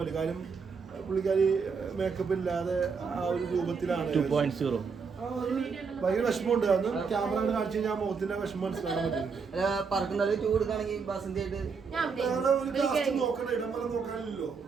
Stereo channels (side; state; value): left; quieter; 5.4 dB